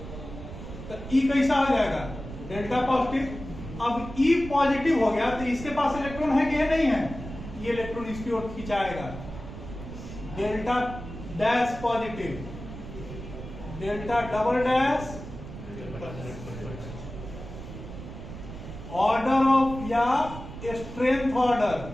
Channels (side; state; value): right; noise; rumble, 11 dB below the sound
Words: तो ई कैसा हो जाएगा, डेल्टा पॉजिटिव। अब ई पॉजिटिव हो गया तो इसके पास इलेक्ट्रॉन है कि नहीं है, ये इलेक्ट्रॉन इसकी ओर खिंचाएगा, delta dash positive, delta double dash, order of या स्ट्रेंथ